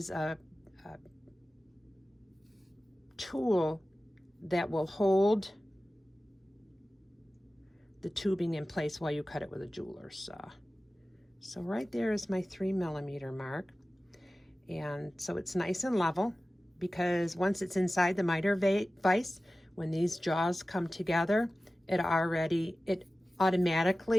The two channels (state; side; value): normal; both; correlation 0.96